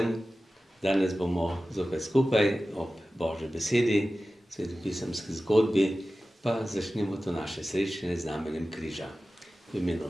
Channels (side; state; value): both; normal; correlation 0.95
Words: Danes bomo zopet skupaj ob Božji besedi, svetopisemski zgodbi, pa začnemo to naše srečanje z znamenjem križa. V imenu